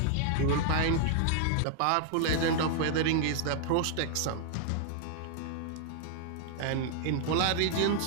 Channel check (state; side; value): different; both; correlation 0.00